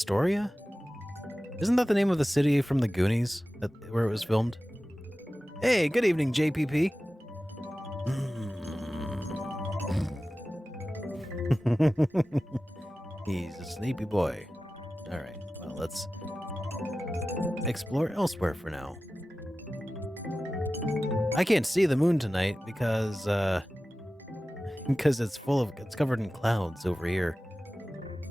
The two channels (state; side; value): normal; both; correlation 0.95